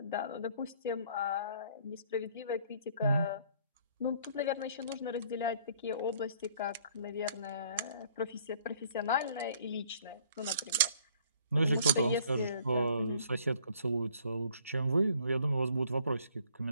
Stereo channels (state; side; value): inverted; both; correlation -0.59